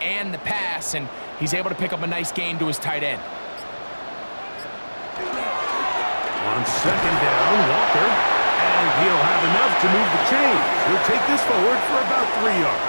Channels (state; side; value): inverted; both; correlation -1.00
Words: the pass, and he's able to pick up a nice gain to his tight end. On 2nd down, Walker. And he'll have enough to move the chains. He'll take this forward for about 3